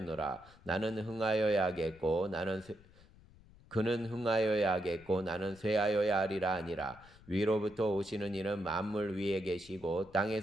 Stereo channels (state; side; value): noise; left; rumble, 24 dB below the sound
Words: 그는 흥하여야 하겠고 나는 쇠하여야 하리라 아니라. 위로부터 오시는 이는 만물 위에 계시고